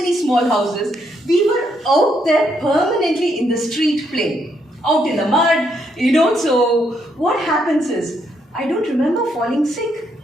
small houses. We were out there permanently in the street playing, out in the mud, So, what happens is, I don't remember falling sick.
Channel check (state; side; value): normal; both; correlation 0.75